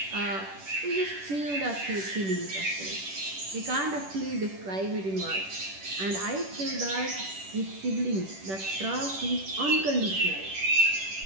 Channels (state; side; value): late; left; 10 ms